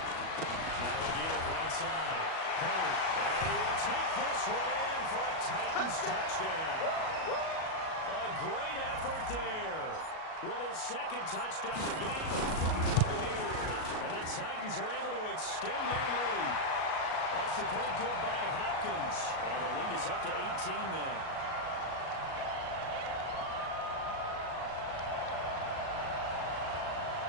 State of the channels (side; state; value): right; late; 37 ms